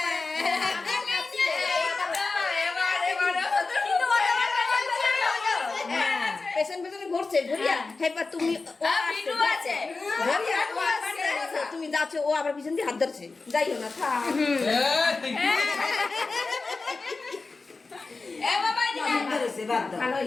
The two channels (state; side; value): quieter; right; 3.9 dB